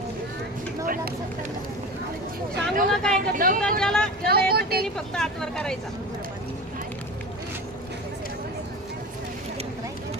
सांगू नका काय दौतात ज्याला ज्याला येतं त्यांनी फक्त हातवर करायचा.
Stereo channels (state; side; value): normal; both; correlation 0.31